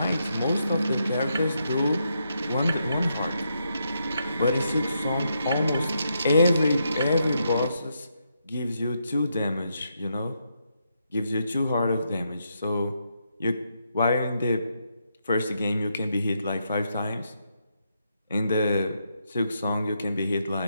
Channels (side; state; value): both; inverted; correlation -0.80